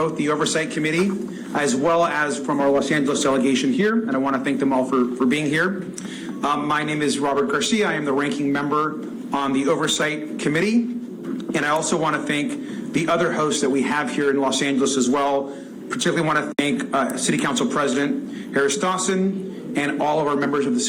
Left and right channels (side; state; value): both; identical; correlation 1.00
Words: the Oversight Committee as well as from our Los Angeles delegation here, and I want to thank them all for being here. My name is Robert Garcia. I am the ranking member on the Oversight Committee, and I also want to thank the other hosts that we have here in Los Angeles as well. Particularly want to thank City Council President Harris Dawson and all of our